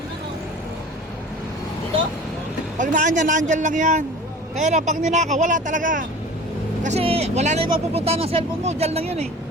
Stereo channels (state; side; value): normal; both; correlation 0.41